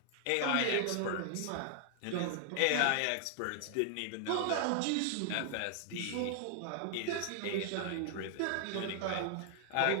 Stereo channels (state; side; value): different; both; correlation 0.00